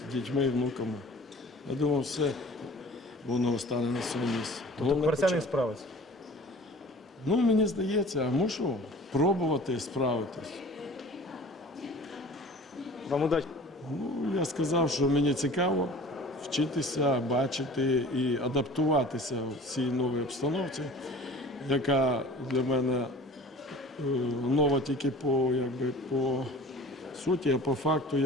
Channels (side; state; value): both; normal; correlation 0.43